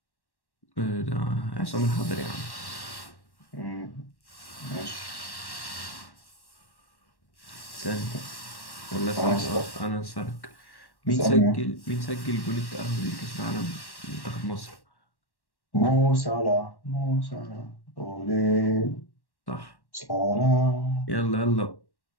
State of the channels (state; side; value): late; right; 1.1 ms